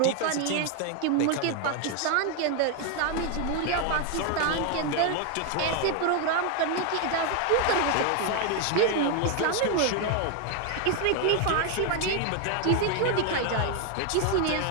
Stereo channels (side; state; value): both; different; correlation 0.01